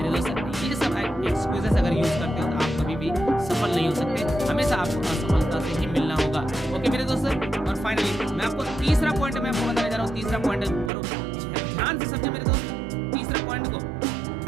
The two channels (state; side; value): drops out; left; at 10.9 s